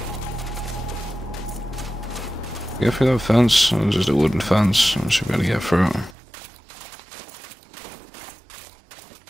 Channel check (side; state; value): left; drops out; at 6.2 s